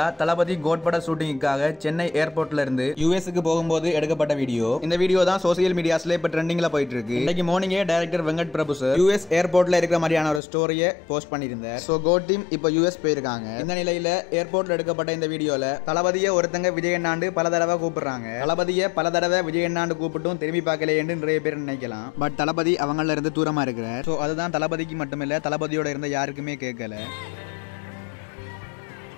தளபதி code பட ஷூட்டிங்காக சென்னை ஏர்போர்ட்ல இருந்து யூஎஸ்க்கு போகும்போது எடுக்கப்பட்ட வீடியோ. இந்த வீடியோ தான் சோசியல் மீடியாஸ்ல இப்ப ட்ரெண்டிங்ல போயிட்டு இருக்கு. இன்னைக்கு மார்னிங்கே director Venkat Prabhu sir US ஏர்போர்ட்ல இருக்கிற மாதிரியான ஒரு ஸ்டோரியை போஸ்ட் பண்ணியிருந்தார். சோ கோட் டீம் இப்ப யூஎஸ் போயிருக்காங்க. இந்த நிலையில ஏர்போர்ட்ல எடுக்கப்பட்ட இந்த வீடியோல தளபதியை ஒருத்தங்க விஜயண்ணாண்டு பல தடவை கூப்பிடுறாங்க. தளபதியை பல தடவை விஜயண்ணாண்டு கூப்பிட்டும் திரும்பி பார்க்கலையேன்னு நிறைய பேர் நினைக்கலாம். பட் தளபதி அவங்கள இருந்து தூரமா இருக்கிறார். சோ அதுதான் தளபதிக்கு மட்டுமில்ல, தளபதியோட இருந்த யாருக்குமே கேட்கல.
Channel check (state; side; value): drops out; right; at 10.4 s